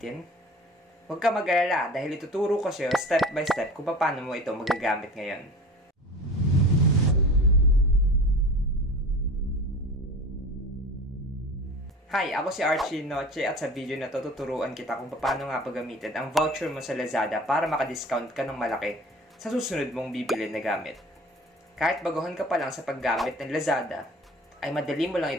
Huwag ka mag-alala dahil ituturo ko sa'yo step by step kung paano mo ito magagamit ngayon. Hi, ako si Archie Noche at sa video na to tuturuan kita kung paano nga paggamitin ang voucher mo sa Lazada para maka-discount ka ng malaki sa susunod mong bibili na gamit. Kahit baguhan ka pa lang sa paggamit ng Lazada, ay madali mo lang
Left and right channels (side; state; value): both; normal; correlation 0.39